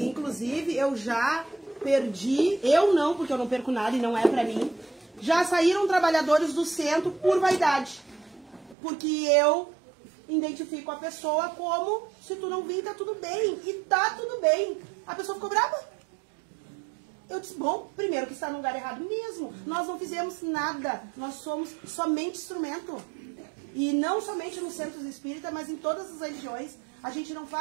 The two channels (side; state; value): left; drops out; at 8.8 s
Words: inclusive, eu já perdi, eu não, porque eu não perco nada e não é pra mim, já saíram trabalhadores do centro por vaidade. Porque eu identifico a pessoa como, se tu não vir, tá tudo bem. E tá tudo bem. A pessoa ficou brava. Eu disse, bom, primeiro que está no lugar errado mesmo. Nós não fizemos nada. Nós somos somente instrumento. E não somente nos centros espíritas, mas em todas as religiões. A gente não